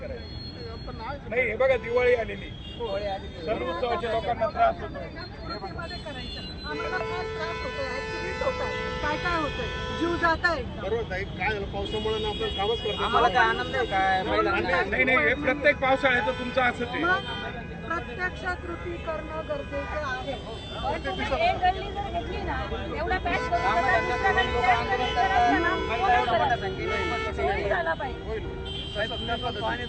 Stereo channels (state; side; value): identical; both; correlation 1.00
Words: नाही, हे बघा, दिवाळी आलेली, सण उत्सवाच्या लोकांना त्रास होतो. काय होतंय, जीव जात आहे. बरोबर आहे. काय झालं, पावसामुळे ना आपण कामच करतो. आम्हाला काय आनंद आहे काय? नाही, हे प्रत्येक पावसाळ्याचं तुमचं असंच आहे. प्रत्यक्षात कृती करणं गरजेचं आहे. एक गल्ली जर घेतली ना, एवढा पॅच झाला पाहिजे.